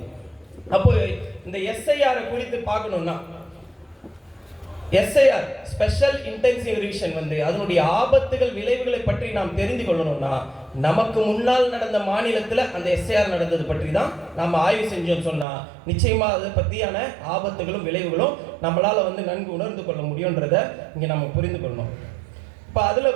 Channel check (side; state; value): left; drops out; at 15.5 s